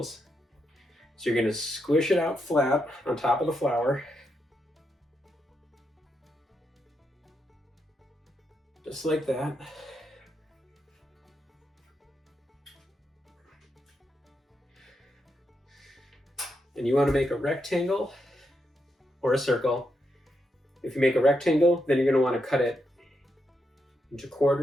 So you're going to squish it out flat on top of the flour. Just like that. And you want to make a rectangle or a circle. If you make a rectangle, then you're going to want to cut it into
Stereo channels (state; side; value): normal; both; correlation 0.83